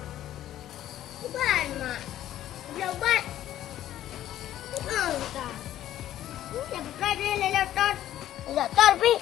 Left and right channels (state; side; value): quieter; right; 12.6 dB